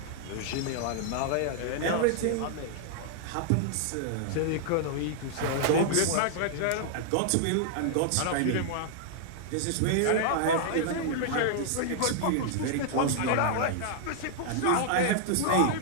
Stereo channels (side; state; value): both; different; correlation -0.01